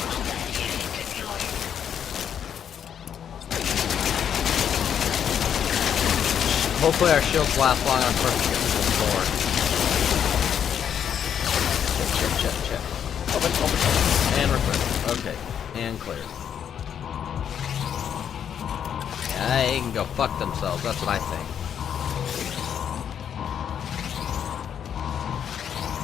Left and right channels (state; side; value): quieter; right; 8.7 dB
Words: Hopefully our shields last long on first to get to the door. Check. Open. And we're clear. Okay. And clear. Yeah, they can go fuck themselves, that's what I think.